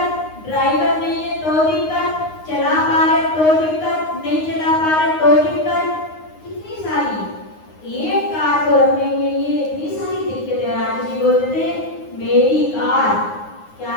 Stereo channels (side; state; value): right; late; 9.6 ms